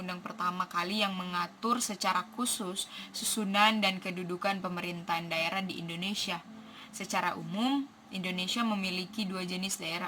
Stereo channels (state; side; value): identical; both; correlation 1.00